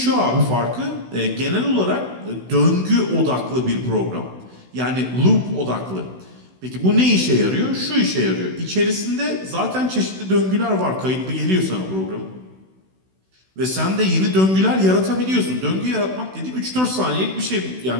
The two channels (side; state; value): left; late; 16 ms